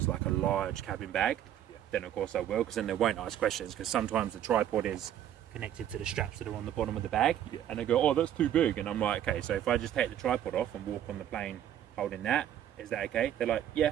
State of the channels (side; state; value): left; quieter; 10.9 dB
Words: like a large cabin bag, then of course I will, because then they won't ask questions, because sometimes the tripod is connected to the straps that are on the bottom of the bag, and they go, oh, that's too big, and I'm like, okay, so if I just take the tripod off and walk on the plane holding that, is that okay? They're like,